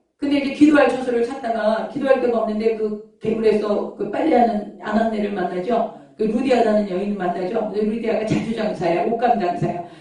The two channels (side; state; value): both; identical; correlation 1.00